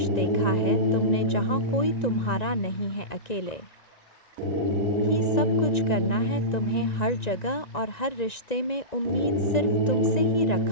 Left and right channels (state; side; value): late; right; 1.9 ms